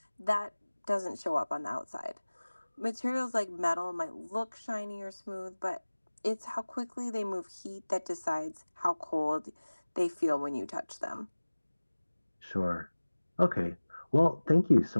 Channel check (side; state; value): both; inverted; correlation -1.00